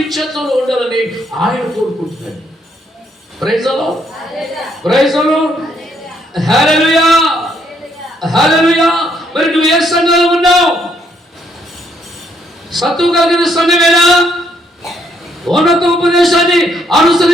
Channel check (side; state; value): both; normal; correlation 0.71